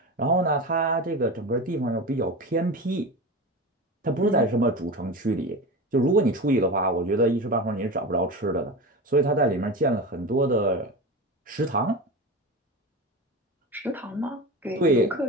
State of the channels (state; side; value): normal; both; correlation 0.26